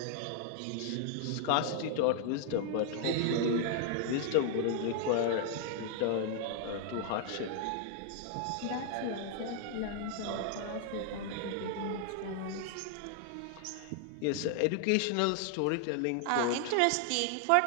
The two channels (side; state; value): both; different; correlation 0.00